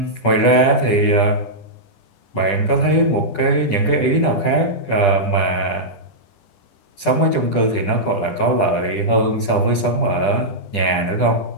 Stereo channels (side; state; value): right; late; 10 ms